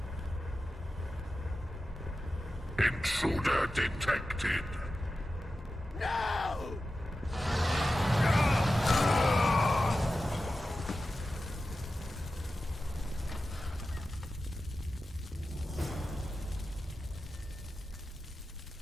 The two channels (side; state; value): both; normal; correlation 0.93